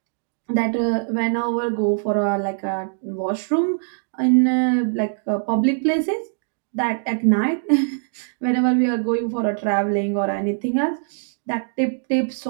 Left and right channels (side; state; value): left; silent; digital silence